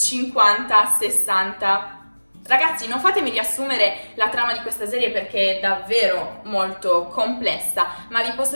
Ragazzi, non fatemi riassumere la trama di questa serie perché è davvero molto complessa, ma vi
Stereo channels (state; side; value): inverted; both; correlation -1.00